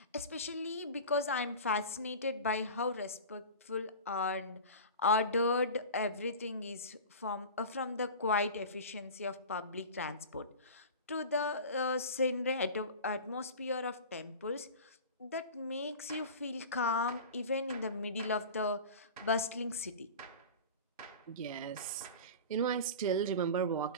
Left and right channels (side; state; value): both; inverted; correlation -0.34